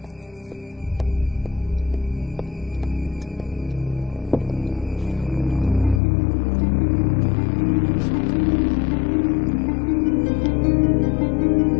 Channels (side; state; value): right; drops out; at 6.0 s